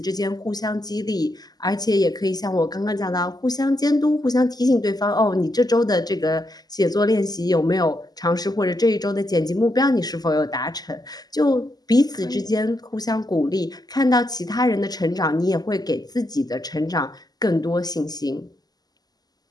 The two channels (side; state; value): right; late; 0.19 ms